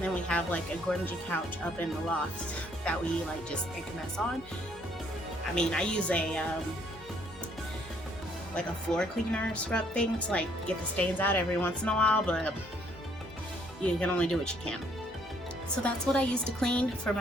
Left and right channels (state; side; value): normal; both; correlation 0.66